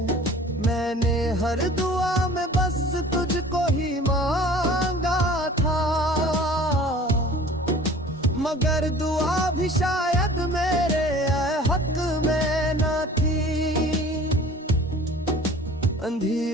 मैंने हर दुआ में बस तुझको ही मांगा था, मगर दुआ भी शायद मेरे हक में न थी।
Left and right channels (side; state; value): both; normal; correlation 0.46